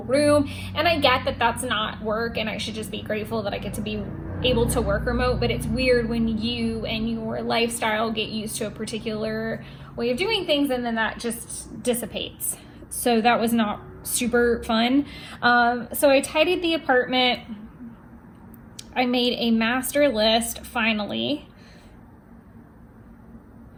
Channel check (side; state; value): both; identical; correlation 1.00